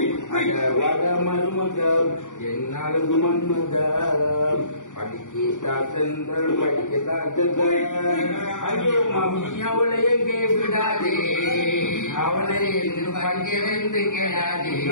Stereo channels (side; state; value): right; late; 0.86 ms